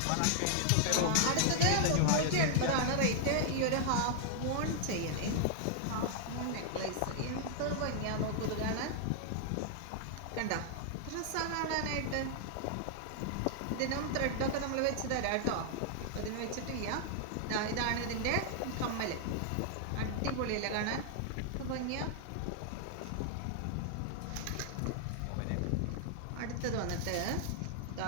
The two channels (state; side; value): different; both; correlation -0.01